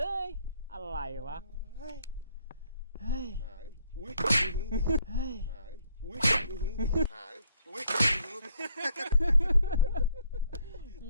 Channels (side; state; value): both; inverted; correlation -0.66